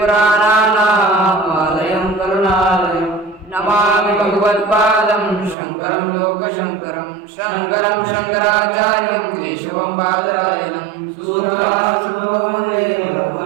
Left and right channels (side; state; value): left; drops out; at 5.6 s